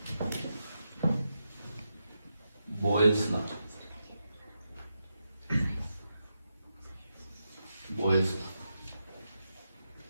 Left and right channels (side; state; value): both; inverted; correlation -0.87